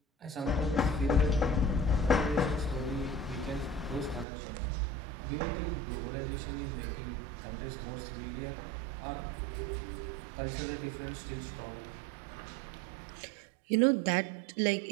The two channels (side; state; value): left; drops out; at 4.2 s